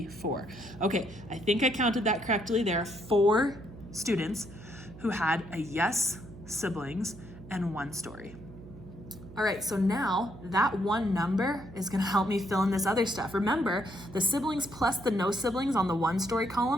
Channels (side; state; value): right; noise; hum, 17 dB below the sound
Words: 4. Okay, I think I counted that correctly. There are 4 students who had a yes siblings and 1-story. All right, so now that one number is gonna help me fill in this other stuff. Remember, the siblings plus the no siblings on the 1-story